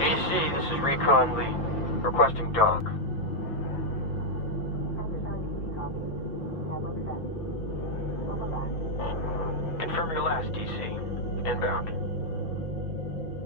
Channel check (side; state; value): right; late; 5.8 ms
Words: this is Recon Lee. Requesting dock. Confirm your last, DC. Inbound.